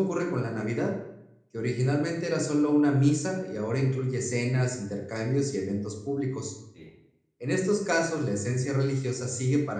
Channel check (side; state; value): both; identical; correlation 1.00